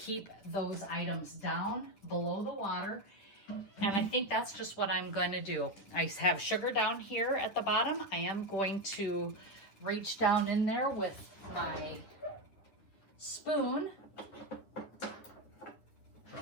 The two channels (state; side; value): late; right; 10 ms